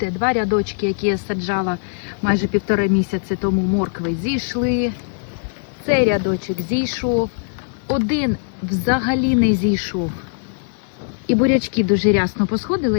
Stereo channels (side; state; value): right; silent; digital silence